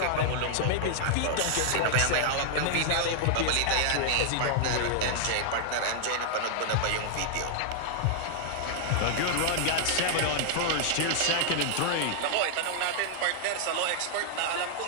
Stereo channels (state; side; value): different; both; correlation -0.01